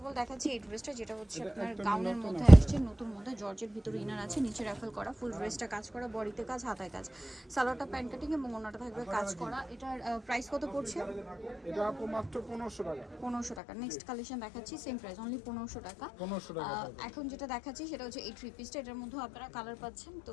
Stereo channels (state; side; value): drops out; right; at 13.6 s